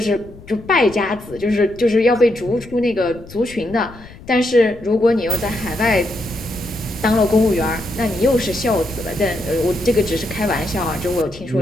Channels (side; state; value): left; noise; rumble, 19 dB below the sound